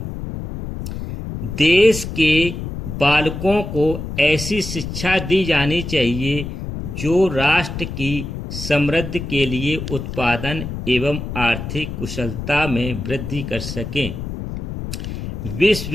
देश के बालकों को ऐसी शिक्षा दी जानी चाहिए जो राष्ट्र की समृद्धि के लिए उत्पादन एवं आर्थिक कुशलता में वृद्धि कर सकें।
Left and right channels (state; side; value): noise; left; rumble, 7 dB below the sound